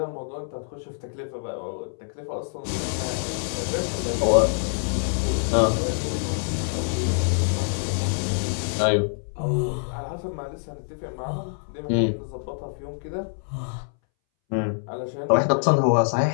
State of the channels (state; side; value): silent; right; 61 dB below the other